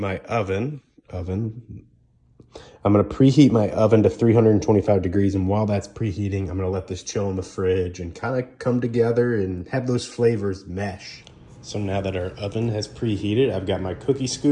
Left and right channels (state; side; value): identical; both; correlation 1.00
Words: oven. I'm gonna preheat my oven to 325 degrees, and while that's preheating, I'm gonna let this chill in the fridge and kind of come together and have those flavors mesh. So now that our oven has preheated, I've got my cookie